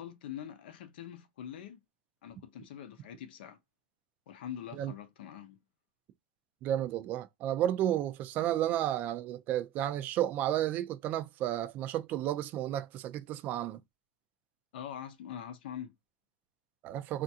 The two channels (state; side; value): quieter; left; 9.5 dB